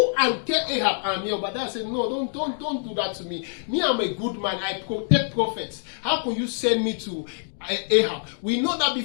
and tell Ahab. And Obadiah said, no, don't do that to me. Me, I'm a good man. I protect prophets. How can you send me to Ahab? We know that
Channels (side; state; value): right; silent; digital silence